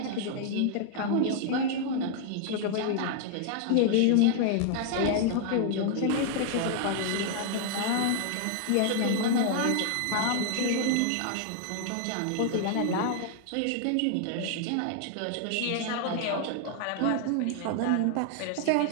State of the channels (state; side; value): different; both; correlation 0.00